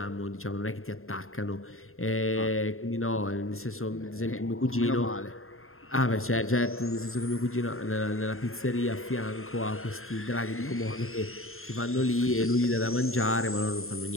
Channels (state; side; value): late; right; 0.61 ms